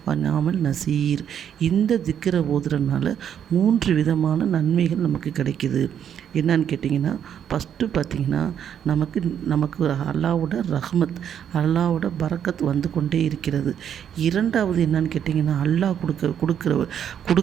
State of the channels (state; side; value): quieter; left; 9.0 dB